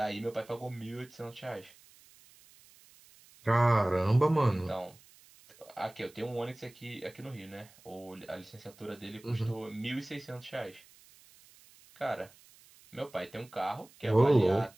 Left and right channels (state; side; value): noise; right; hiss, 25 dB below the sound